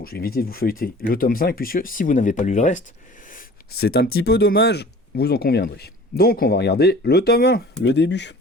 je vais éviter de vous feuilleter le tome 5, puisque si vous n'avez pas lu le reste, c'est un petit peu dommage, vous en conviendrez. Donc on va regarder le tome 1, le début.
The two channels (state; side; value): normal; both; correlation 0.45